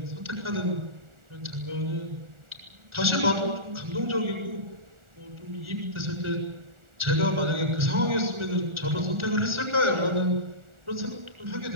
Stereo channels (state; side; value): late; left; 1.4 ms